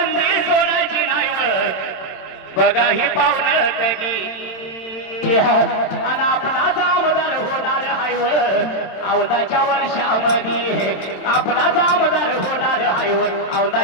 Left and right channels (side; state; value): right; late; 27 ms